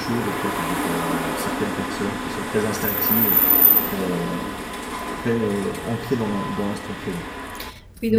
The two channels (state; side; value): identical; both; correlation 1.00